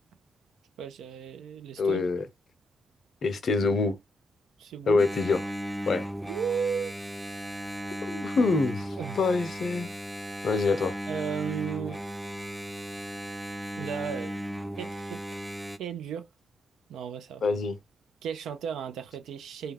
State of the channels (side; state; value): both; normal; correlation 0.80